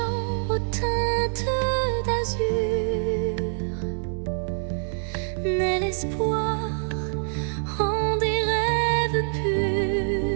aux teintes d'azur, naît l'espoir en des rêves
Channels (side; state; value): left; silent; digital silence